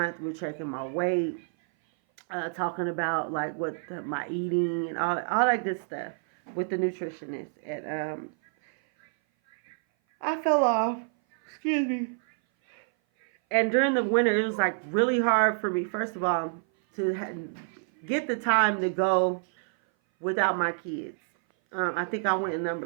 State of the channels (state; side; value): silent; left; 57 dB below the other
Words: We're checking my weight, talking about my eating and all that good stuff with the nutritionist. And I fell off. Excuse me. And during the winter, it was really hard for me, first of all, to get the time to go without my kids. I think I went